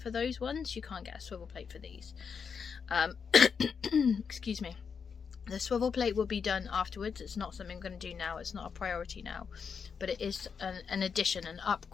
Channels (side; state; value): right; quieter; 6.2 dB